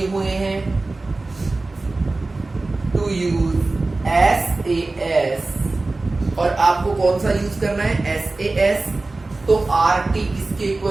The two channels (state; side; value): quieter; left; 3.3 dB